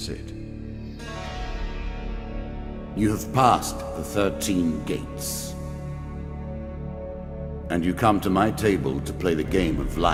You have passed the 13 gates. And you come to my table to play the game of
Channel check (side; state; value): both; identical; correlation 1.00